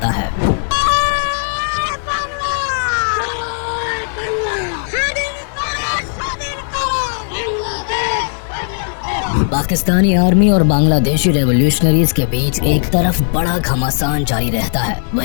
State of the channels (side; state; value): right; silent; 69 dB below the other